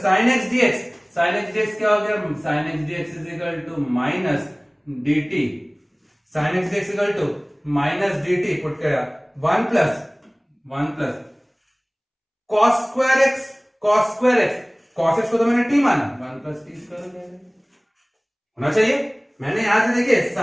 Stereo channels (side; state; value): both; identical; correlation 1.00